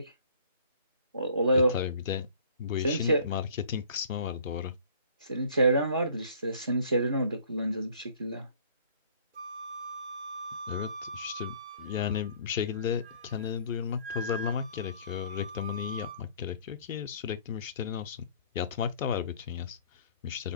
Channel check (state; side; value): inverted; both; correlation -0.54